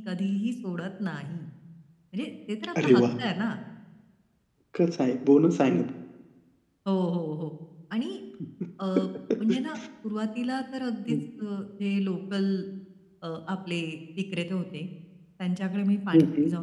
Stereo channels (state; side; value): identical; both; correlation 1.00